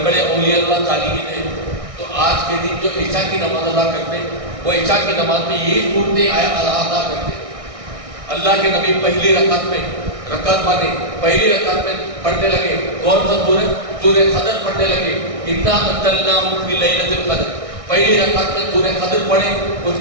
بڑے اولیاء اللہ صالحین ہیں، تو آج کے دن جو عشاء کی نماز ادا کرتے ہیں وہ عشاء کی نماز میں یہی صورتیں ادا کرتے ہیں. اللہ کے نبی پہلی رکعت میں پہلی رکعت میں پڑھنے لگے. کون سا سورہ قدر پڑھنے لگے. انا انزلناہ فی لیلۃ القدر. پہلی رکعت میں سورہ قدر پڑھے. اس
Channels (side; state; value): left; late; 1.6 ms